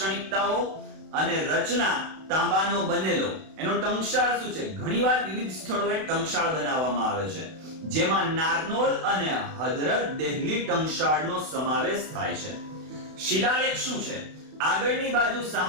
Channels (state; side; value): late; left; 32 ms